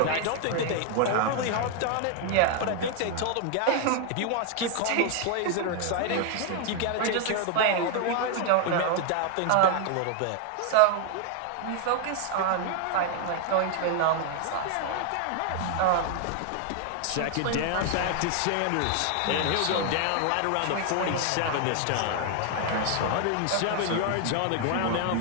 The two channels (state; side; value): different; both; correlation 0.00